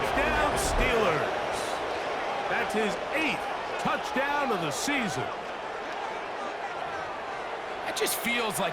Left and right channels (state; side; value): identical; both; correlation 1.00